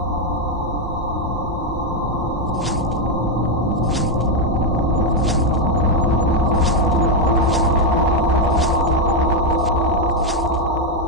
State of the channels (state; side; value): normal; both; correlation 0.03